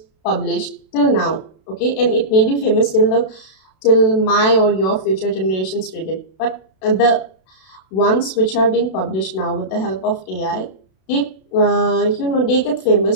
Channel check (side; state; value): right; late; 32 ms